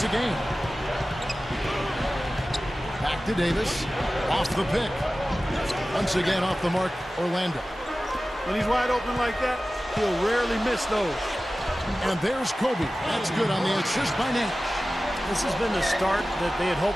a game. Back to Davis. Off the pick. Once again off the mark, Orlando. When he's wide open like that, he'll rarely miss those. And there's Kobe. That's good on the assist by Nash. This has been the start that they had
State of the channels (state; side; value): normal; both; correlation 0.96